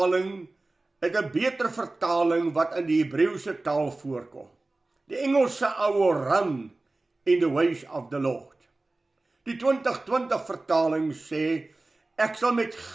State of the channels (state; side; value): quieter; left; 3.1 dB